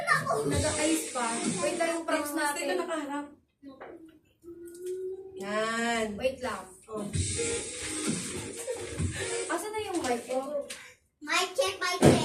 Nag-ayos pa. Wait lang yung props Dito natin. nakaharap. Yan. Wait lang. Oh. Asan na yung mic ko? Mic check, mic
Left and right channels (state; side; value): identical; both; correlation 1.00